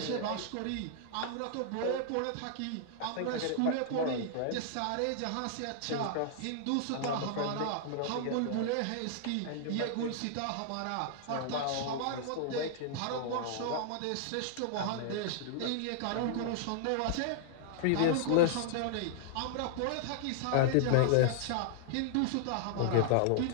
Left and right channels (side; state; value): both; different; correlation -0.01